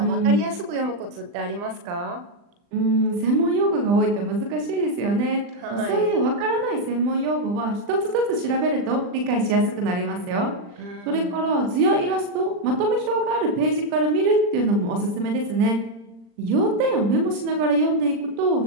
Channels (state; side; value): late; left; 40 ms